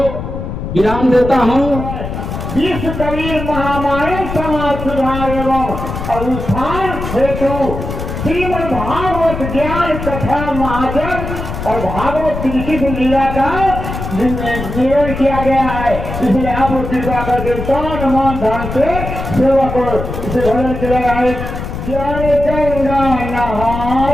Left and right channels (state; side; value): noise; left; rumble, 6 dB below the sound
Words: विराम देता हूँ। विश्व कबीर महामारी समाज सुधार एवं उत्थान हेतु श्रीमद् भागवत ज्ञान कथा महाजन और भागवत श्री लीला का निवेदन किया गया है। इसलिए आप लोग कृपा करके तन मन धन से सेवा को इसे भजन चला रहा है। जल गंगा